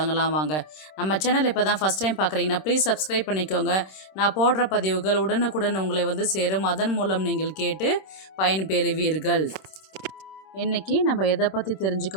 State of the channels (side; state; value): right; late; 26 ms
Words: வாங்க. நம்ம சேனல் இப்போ தான் ஃபஸ்ட் டைம் பார்க்குறீங்கன்னா ப்ளீஸ் சப்ஸ்கிரைப் பண்ணிக்கோங்க. நான் போடுற பதிவுகள் உடனுக்குடன் உங்களை சேரும். அதன் மூலம் நீங்கள் கேட்டு பயன்பெறுவீர்கள். இன்றைக்கி நம்ம எதை பற்றி தெரிஞ்சுக்க